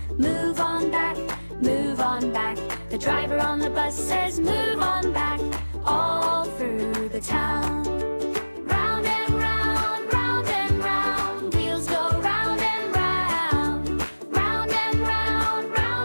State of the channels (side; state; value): both; inverted; correlation -1.00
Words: move on back, move on back. The driver on the bus says, move on back, all through the town. Round and round, round and round, wheels go round and round, round and round,